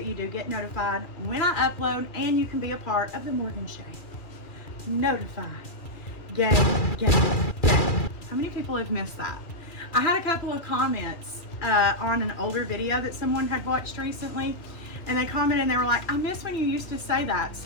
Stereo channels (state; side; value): late; right; 2.4 ms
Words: you do get notified when I upload, and you can be a part of the Morgan Shay Notify Gang. How many people have missed that? I had a couple of comments on an older video that someone had watched recently, and they commented and they were like, I miss when you used to say that.